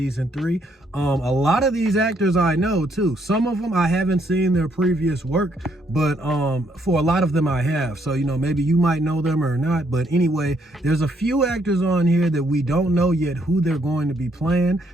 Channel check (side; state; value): both; normal; correlation 0.72